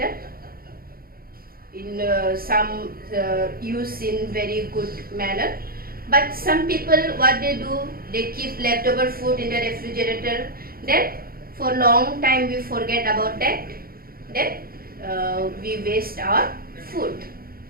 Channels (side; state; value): left; late; 0.43 ms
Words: in some use in very good manner, but some people, what they do, they keep leftover food in the refrigerator, then for long time we forget about that, then we waste our food.